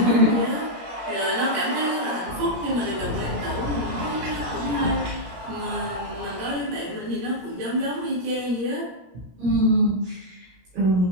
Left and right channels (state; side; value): late; left; 17 ms